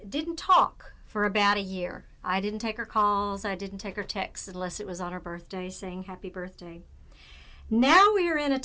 didn't talk for about a year. I didn't take her calls. I didn't take her texts unless it was on her birthday saying happy birthday. Now we are in a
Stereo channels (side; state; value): both; identical; correlation 1.00